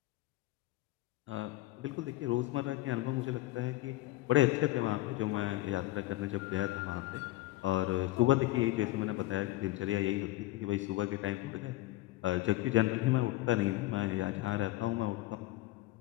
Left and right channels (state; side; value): quieter; right; 17.4 dB